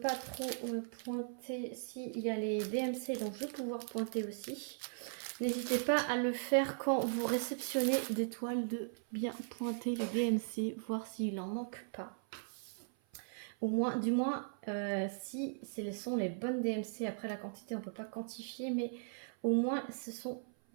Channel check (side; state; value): left; silent; 52 dB below the other